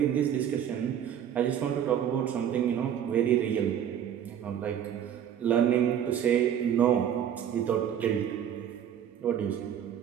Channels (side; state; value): left; quieter; 9.5 dB